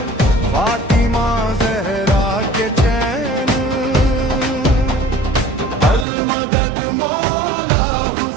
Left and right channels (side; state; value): left; drops out; at 6.1 s